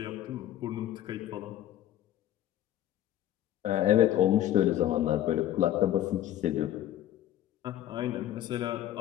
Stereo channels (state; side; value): quieter; right; 12.5 dB